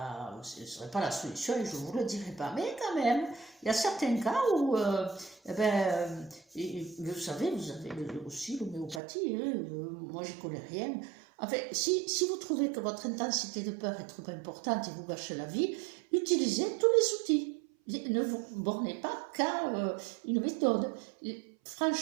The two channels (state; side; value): drops out; left; at 9.0 s